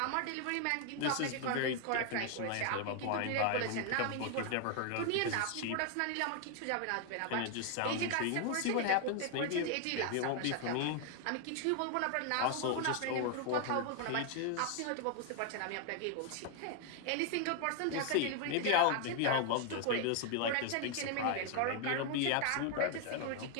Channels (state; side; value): different; both; correlation 0.00